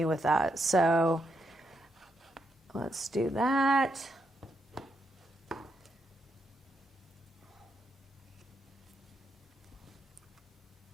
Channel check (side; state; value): both; normal; correlation 0.80